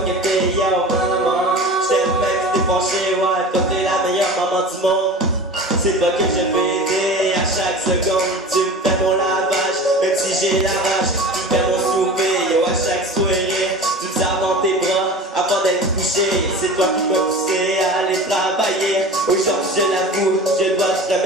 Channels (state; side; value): normal; both; correlation 0.35